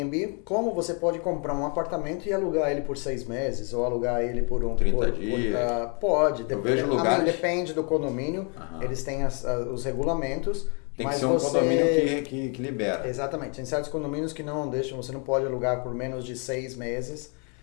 como você pode comprar um apartamento e alugar ele por 6 meses, ou alugar ele por 30 dias. Pode. Eu vejo lugares... Depende do condomínio. Eles têm os regulamentos. Tem que ser um condomínio que libera. Exatamente. Tem certos condomínios que não deixam, você não pode alugar por menos de 6 meses.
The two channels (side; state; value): right; quieter; 36.5 dB